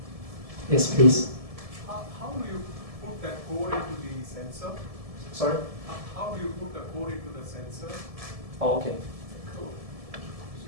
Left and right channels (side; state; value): left; late; 1.7 ms